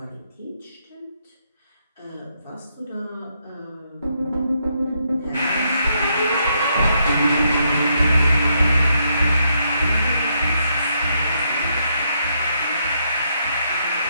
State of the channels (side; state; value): both; inverted; correlation -0.77